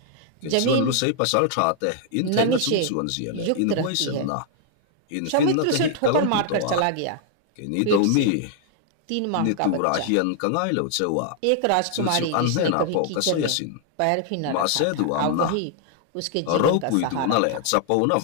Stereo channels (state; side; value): different; both; correlation 0.00